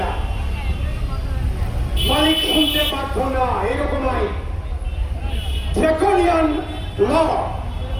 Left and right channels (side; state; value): both; identical; correlation 1.00